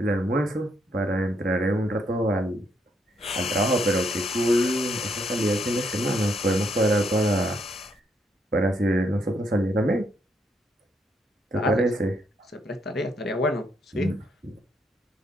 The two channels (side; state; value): both; normal; correlation 0.75